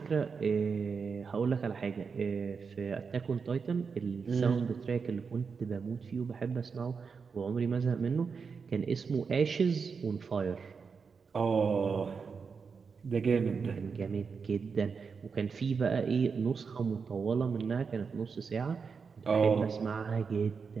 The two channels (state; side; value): quieter; left; 5.5 dB